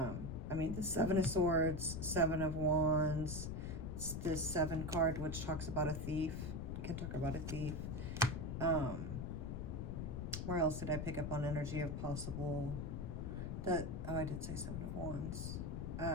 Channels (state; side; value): noise; left; rumble, 4 dB below the sound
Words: mean, the 7 of Swords, 7 of Wands, this 7 card, which talks about a thief. I can talk about a thief. Where else did I pick up on energy of possible? Oh, I did say 7 of Wands.